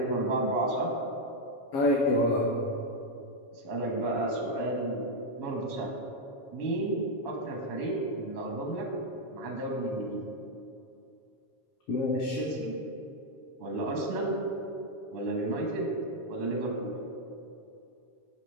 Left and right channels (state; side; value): late; right; 7.3 ms